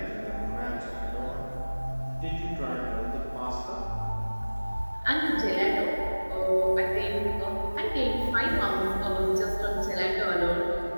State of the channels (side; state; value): both; inverted; correlation -1.00